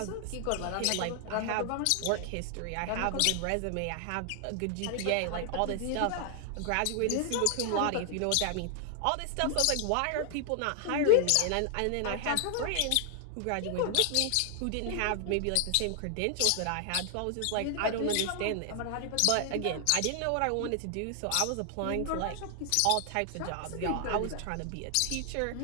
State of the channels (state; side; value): different; both; correlation 0.00